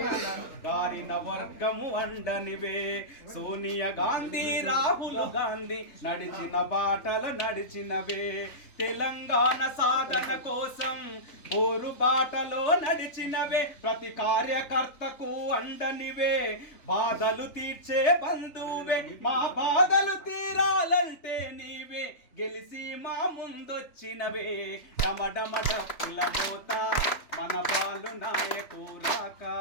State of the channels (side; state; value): right; late; 3.4 ms